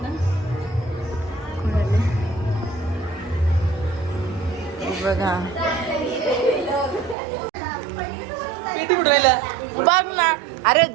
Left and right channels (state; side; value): drops out; left; at 7.2 s